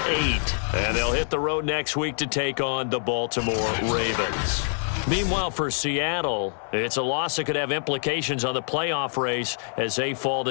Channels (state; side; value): silent; right; 61 dB below the other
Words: And they'll hit the road next week to take on the Baltimore Ravens. Meanwhile, for Seattle, it's a loss that could have implications on the playoff race as they fall